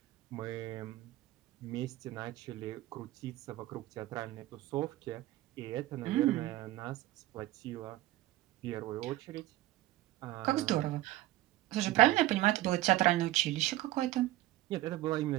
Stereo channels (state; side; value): quieter; left; 16.3 dB